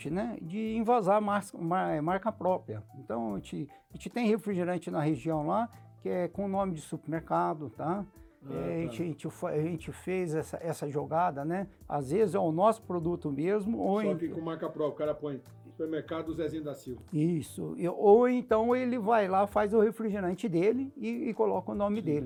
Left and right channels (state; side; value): identical; both; correlation 1.00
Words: né, de invasar marca própria. Então, a gente tem refrigerante na região lá, que é com o nome de supermercado, tá? A gente fez essa jogada, né? Às vezes é o nosso produto mesmo. Só que com marca própria, o cara põe supermercado Zezinho da Silva. Isso. Ou então ele vai lá, faz o refrigerante dele e coloca o nome